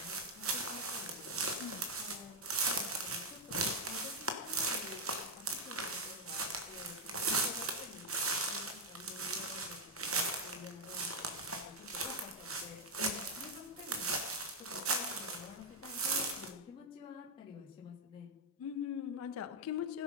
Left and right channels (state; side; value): normal; both; correlation -0.01